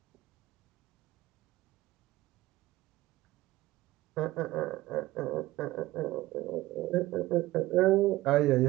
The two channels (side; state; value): left; quieter; 17.6 dB